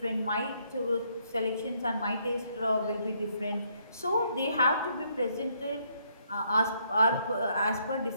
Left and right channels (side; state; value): both; inverted; correlation -0.71